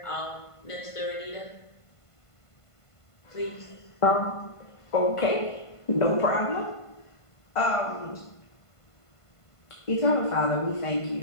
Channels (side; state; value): right; late; 1.5 ms